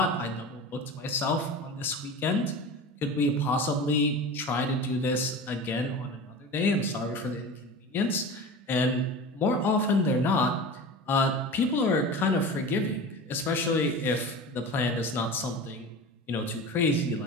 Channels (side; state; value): both; normal; correlation 0.32